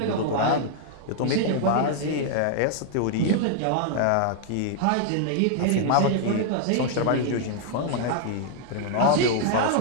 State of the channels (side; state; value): both; different; correlation 0.00